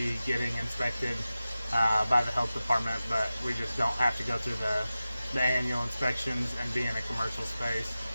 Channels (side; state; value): both; inverted; correlation -0.95